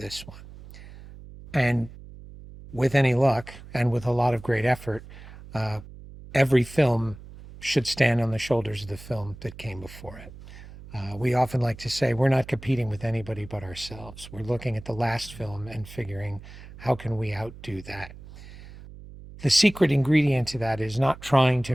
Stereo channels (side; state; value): right; noise; hum, 17 dB below the sound